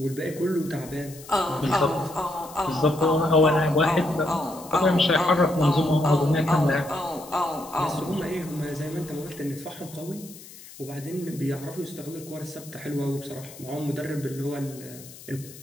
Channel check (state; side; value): noise; left; hiss, 18 dB below the sound